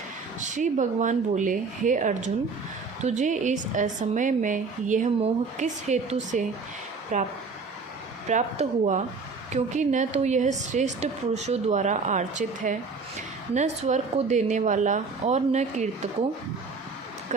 श्री भगवान बोले, हे अर्जुन, तुझे इस असमय में यह मोह किस हेतु से प्राप्त हुआ? क्योंकि न तो यह श्रेष्ठ पुरुषों द्वारा आर्चित है, न स्वर्ग को देने वाला और न कीर्ति को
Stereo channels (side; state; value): left; quieter; 4.5 dB